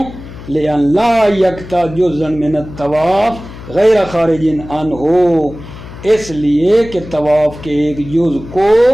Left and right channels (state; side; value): noise; left; hum, 15 dB below the sound